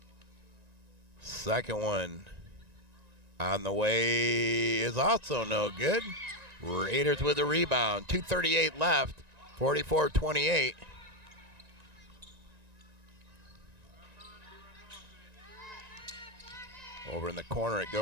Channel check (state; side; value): late; left; 1.9 ms